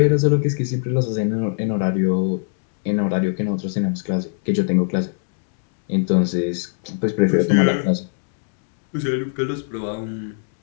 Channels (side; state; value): right; silent; 65 dB below the other